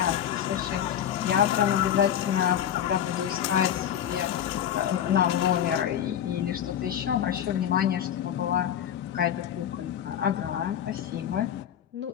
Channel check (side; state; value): right; quieter; 9.9 dB